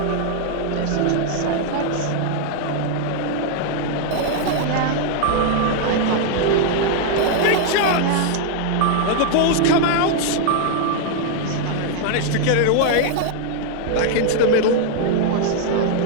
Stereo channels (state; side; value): different; both; correlation 0.00